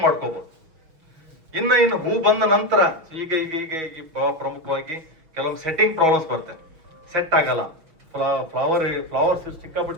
ಮಾಡ್ಕೋಬಹುದು. ಇನ್ನು ಹೂ ಬಂದ ನಂತರ ಈಗ ಪ್ರಮುಖವಾಗಿ ಕೆಲವೊಂದು ಸೆಟ್ಟಿಂಗ್ ಪ್ರಾಬ್ಲಮ್ಸ್ ಬರ್ತವೆ. ಸೆಟ್ ಆಗಲ್ಲ, ಫ್ಲವರ್ಸ್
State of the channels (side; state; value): left; late; 6.2 ms